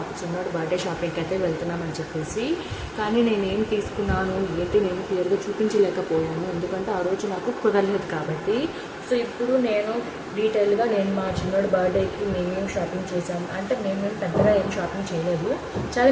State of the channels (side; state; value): both; identical; correlation 1.00